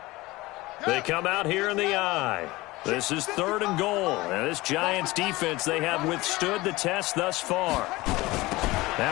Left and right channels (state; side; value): quieter; right; 20.3 dB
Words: They come out here in the eye. This is 3rd and goal. And this Giants defense, they have withstood the test thus far.